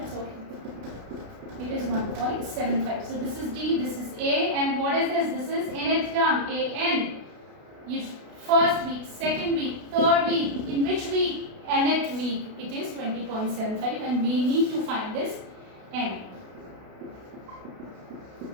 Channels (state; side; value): late; left; 32 ms